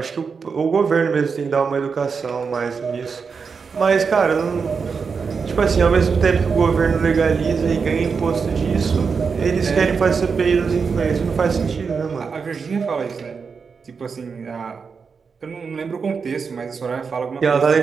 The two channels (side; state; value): left; quieter; 5.5 dB